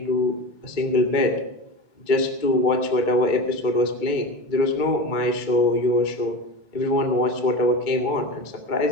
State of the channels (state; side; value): late; right; 2.2 ms